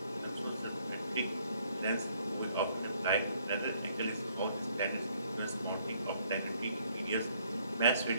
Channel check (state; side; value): inverted; both; correlation -0.66